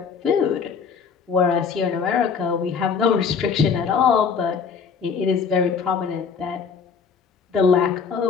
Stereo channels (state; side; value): quieter; right; 6.1 dB